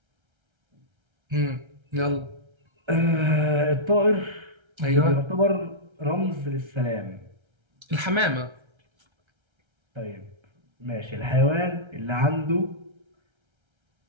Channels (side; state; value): left; late; 1.3 ms